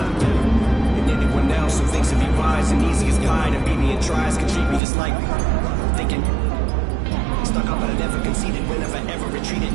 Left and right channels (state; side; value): drops out; left; at 4.8 s